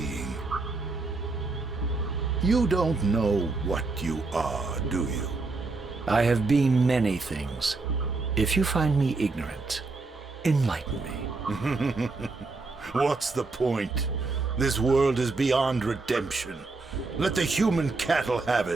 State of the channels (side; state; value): left; quieter; 3.7 dB